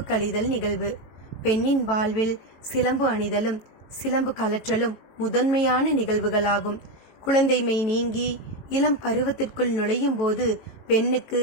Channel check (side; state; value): right; late; 18 ms